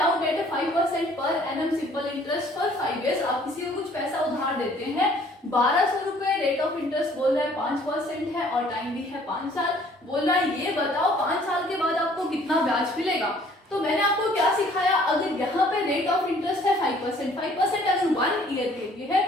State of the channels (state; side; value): normal; both; correlation 0.58